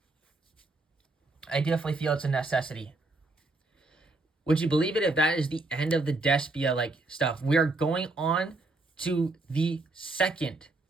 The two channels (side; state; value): left; quieter; 3.1 dB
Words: I definitely feel it's a necessity. Would you believe it if that is the end of the Despia like stuff? We are going on to the second